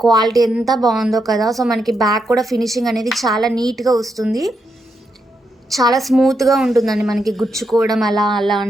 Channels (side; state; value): both; normal; correlation 0.82